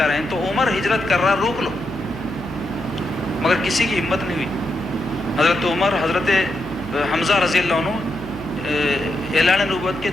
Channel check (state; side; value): noise; left; hum, 17 dB below the sound